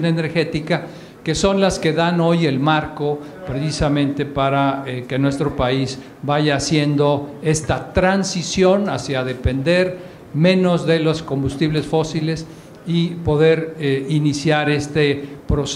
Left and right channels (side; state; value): both; identical; correlation 1.00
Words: Energética, que son las que dan hoy el marco precisamente para que nuestro país vaya haciendo esta transición hacia depender menos de los combustibles fósiles y poder iniciar este